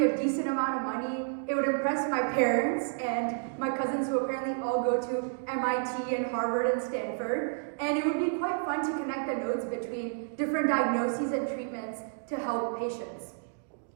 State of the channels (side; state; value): left; silent; digital silence